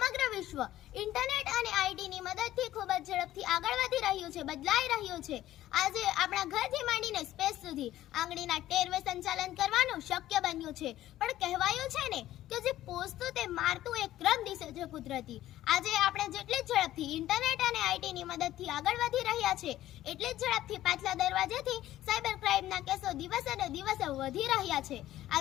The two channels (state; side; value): quieter; right; 14.0 dB